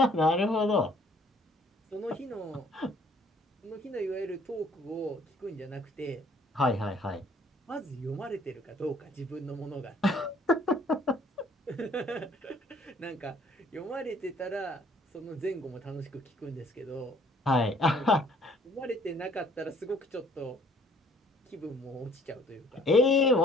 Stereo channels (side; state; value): both; normal; correlation 0.59